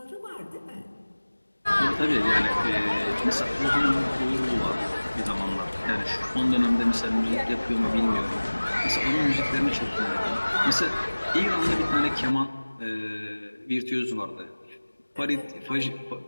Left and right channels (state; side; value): inverted; both; correlation -1.00